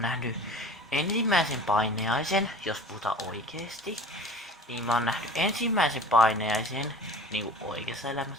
nähnyt ensimmäisen paineaisen, jos puhutaan oikeesti. Niin mä oon nähnyt ensimmäisen paineaisen niinku oikeassa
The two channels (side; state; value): both; normal; correlation 0.41